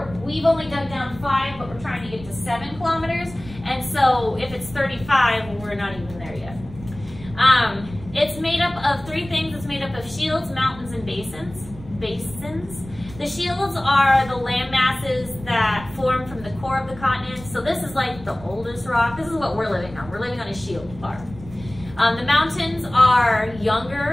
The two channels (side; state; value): right; noise; rumble, 16 dB below the sound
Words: we've only dug down 5, but we're trying to get to 7 kilometers. And so if it's 35, we're not even there yet. It's made up of 3 things. It's made up of shields, mountains, and basins. The shields are the land masses that form from the core of the continent. So this is like the oldest rock. This is what we're living on. We're living on a shield part. The mountains are